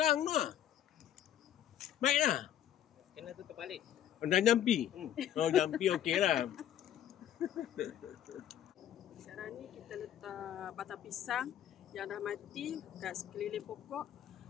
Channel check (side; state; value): right; quieter; 11.0 dB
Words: tu lah. Baiklah. Kena tutup balik. Dah jampi. Oh, jampi okey lah. Sekarang ni kita letak batang pisang yang dah mati kat sekeliling pokok,